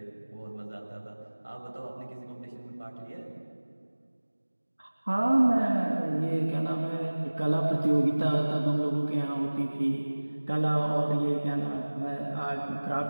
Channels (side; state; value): both; inverted; correlation -1.00